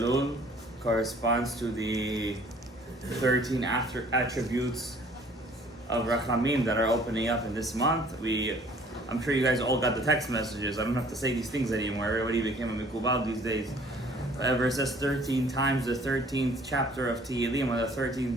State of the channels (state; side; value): normal; both; correlation 0.55